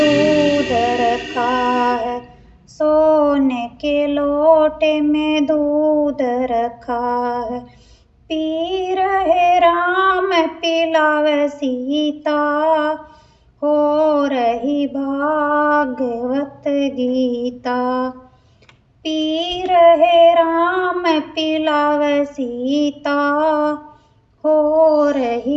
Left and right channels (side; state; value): both; identical; correlation 1.00